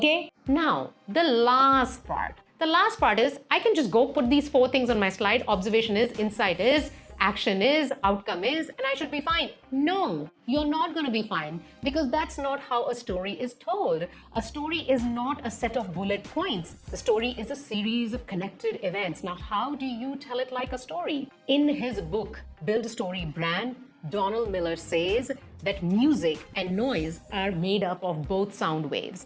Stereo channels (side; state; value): both; identical; correlation 1.00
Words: Now, the last part. The last part is, I can just go put these 4 things on my slide. Observation is, insight is, action is, outcome is, and I should be fine. No, you're not going to be fine, because that's not how a story is told. A story is not a set of bullet points. The story is a series of connected events. Now, how do you tell it like a story? In his book, Build a Story Brand, Donald Miller says that music and noise are made up of both sound waves.